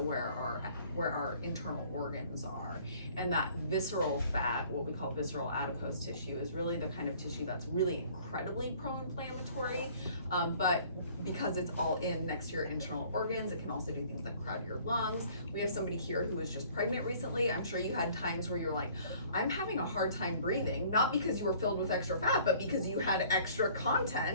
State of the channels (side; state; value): both; inverted; correlation -0.55